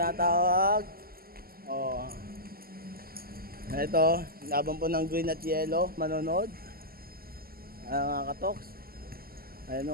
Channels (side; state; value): left; late; 0.43 ms